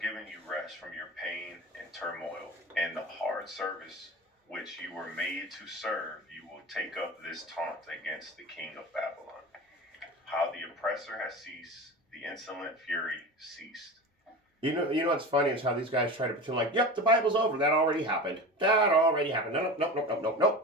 you rest from your pain and turmoil and the hard service which you were made to serve, you will take up this taunt against the king of Babylon. How the oppressor has ceased, the insolent fury ceased. You know what's funny is how these guys try to pretend like, yep, the Bible's over. That already happened.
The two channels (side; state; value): both; normal; correlation 0.30